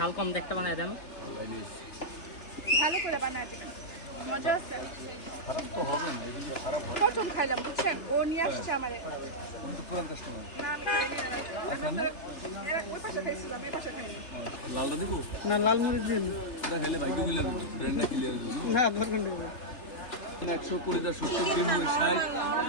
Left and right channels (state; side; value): late; right; 3.3 ms